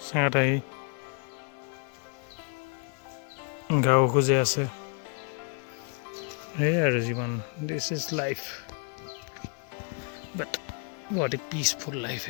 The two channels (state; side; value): quieter; right; 39.8 dB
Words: চেঙাত আহি গাঁও খুজে আছে। এই আৰু জীৱন, this is life, but what A peaceful life